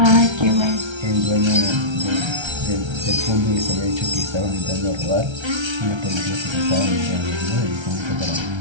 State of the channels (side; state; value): left; late; 1.3 ms